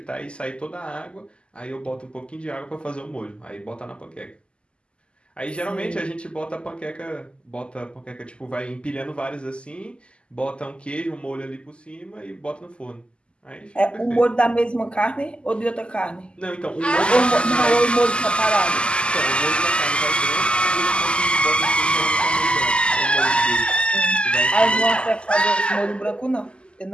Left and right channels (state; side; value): late; right; 0.052 ms